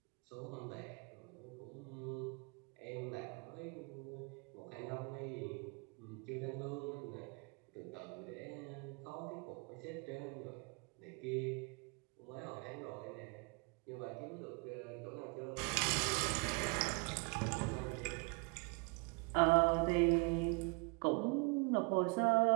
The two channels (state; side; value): quieter; left; 32.7 dB